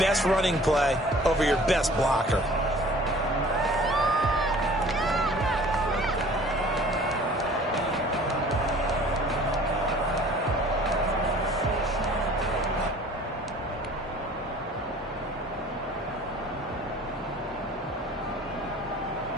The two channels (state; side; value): normal; both; correlation 0.49